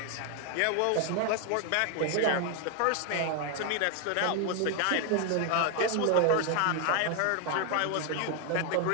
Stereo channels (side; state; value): both; different; correlation 0.01